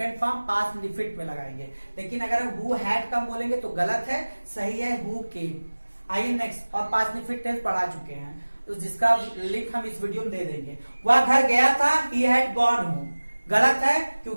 फॉर्म पास्ट इंडिफिनिट में लगाएंगे। लेकिन अगर हम हु हैड कम बोलेंगे तो गलत है, सही है हु केम। आइए नेक्स्ट, और पास्ट इंडिफिनिट टेंस पढ़ा चुके हैं तो जिसका लिंक हम इस वीडियो में दे देंगे। वह घर गया था, ही हैड गॉन होम। गलत है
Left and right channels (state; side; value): inverted; both; correlation -1.00